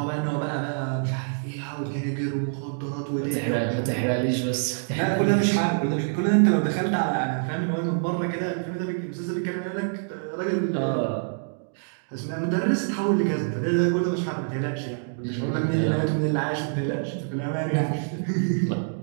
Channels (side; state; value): left; silent; digital silence